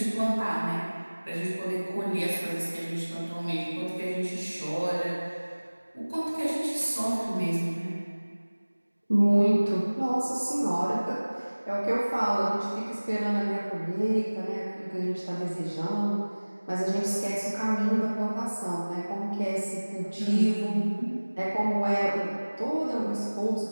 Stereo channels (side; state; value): both; inverted; correlation -1.00